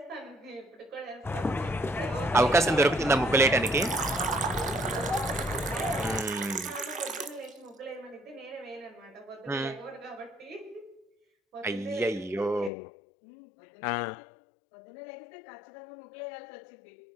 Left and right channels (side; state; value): right; drops out; at 12.7 s